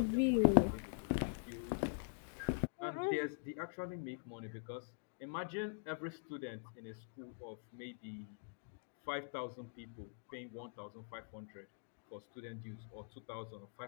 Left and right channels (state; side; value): silent; right; digital silence